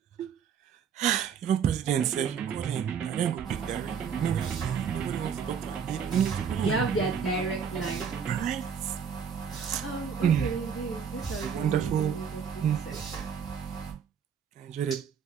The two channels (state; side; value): quieter; left; 7.1 dB